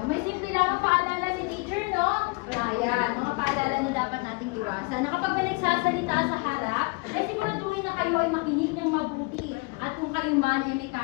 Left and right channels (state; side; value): quieter; right; 27.9 dB